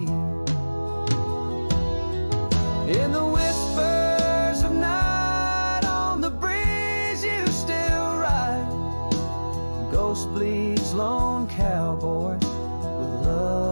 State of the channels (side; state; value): both; inverted; correlation -1.00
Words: In the whispers of night, on the breeze you still ride. Ghost bleeds, lone cowboy, with